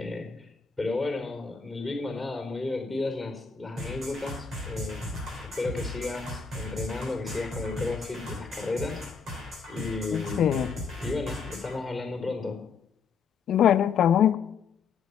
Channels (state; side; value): quieter; right; 5.8 dB